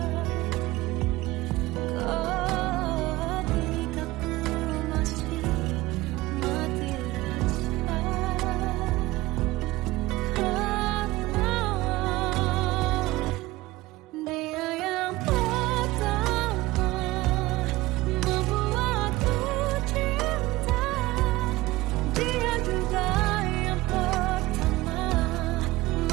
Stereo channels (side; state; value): left; quieter; 19.0 dB